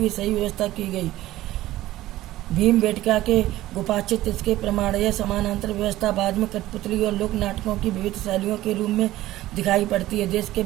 सही व्यवस्था की गई। भीमबेटका के गुफाचित्र इसके प्रमाण। यह समानांतर व्यवस्था बाद में कठपुतली और लोक नाटकों की विविध शैलियों के रूप में दिखाई पड़ती है। देश के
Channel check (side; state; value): left; quieter; 15.7 dB